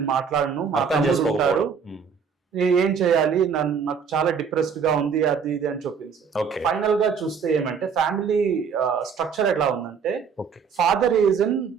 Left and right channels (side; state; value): left; quieter; 6.3 dB